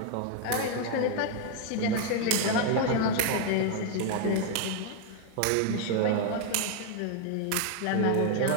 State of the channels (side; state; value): both; different; correlation 0.01